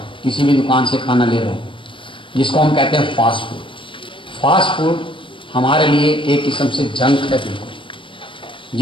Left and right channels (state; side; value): late; right; 0.25 ms